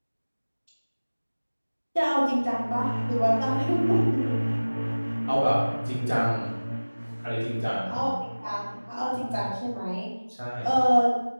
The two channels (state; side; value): inverted; both; correlation -1.00